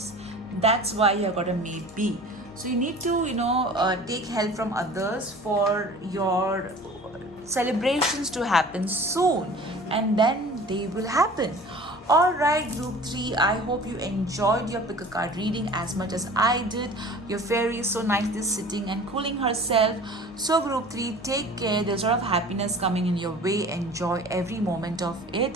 That's why you got a maybe. So you need to take help from others for your celebrations to happen soon, and then they will happen. Alright, group 3, I hope you enjoyed your pick a card reading as much as I did. Your fairy is so nicely sitting and cooling herself. So group 3, take care. There's a lot of happiness coming in your way. Enjoy every moment of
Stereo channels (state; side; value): normal; both; correlation 0.43